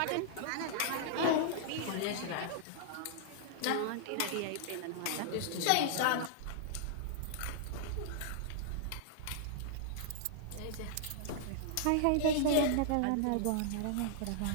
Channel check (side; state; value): both; different; correlation -0.01